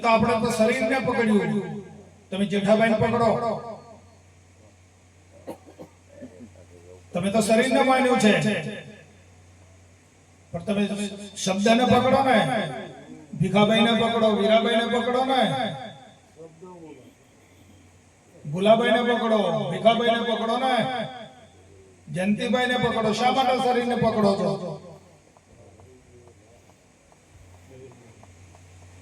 આપણે તો શરીરને પકડ્યું. તમે જેઠાભાઈને પકડો, તમે તો શરીરને માન્યું છે, પણ તમે શબ્દને પકડો ને, ભીખાભાઈને પકડો, વીરાભાઈને પકડો ને, ભુલાભાઈને પકડો, ભીખાભાઈને પકડો ને, જયંતિભાઈ ને પકડો. શા માટે શરીરને પકડો છો?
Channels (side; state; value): both; identical; correlation 1.00